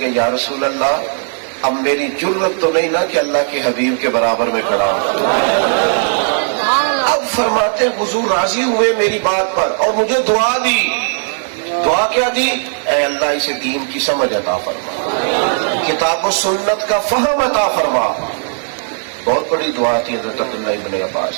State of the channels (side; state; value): left; silent; 69 dB below the other